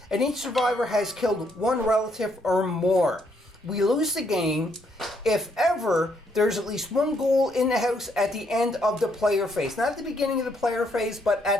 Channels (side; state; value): both; normal; correlation 0.72